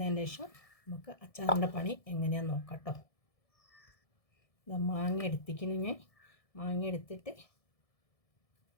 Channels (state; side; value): late; right; 1.7 ms